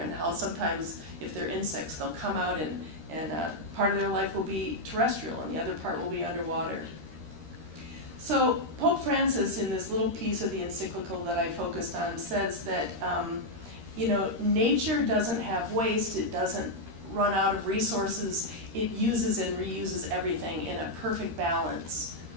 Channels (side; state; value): left; late; 13 ms